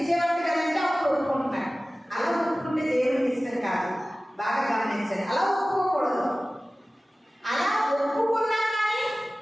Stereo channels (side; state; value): both; normal; correlation 0.97